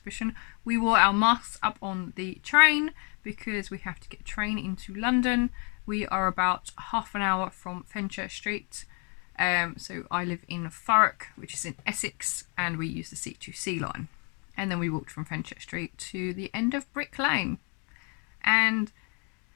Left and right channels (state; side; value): quieter; right; 36.4 dB